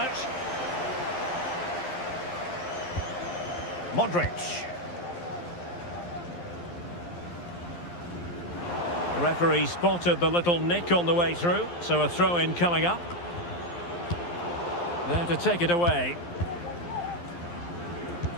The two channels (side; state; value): right; late; 11 ms